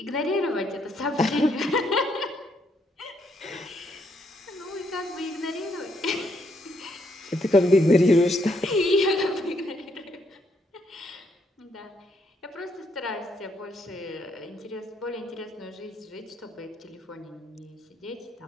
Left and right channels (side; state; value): both; normal; correlation 0.74